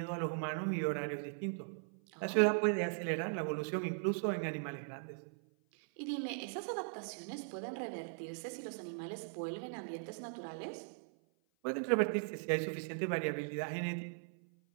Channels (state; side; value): silent; left; 52 dB below the other